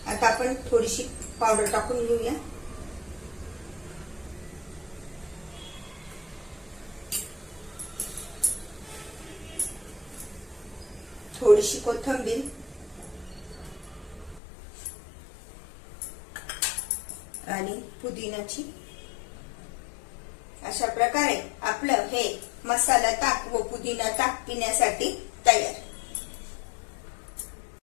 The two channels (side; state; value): right; drops out; at 14.4 s